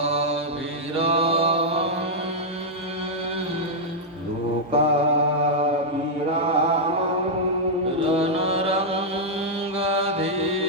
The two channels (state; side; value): normal; both; correlation -0.05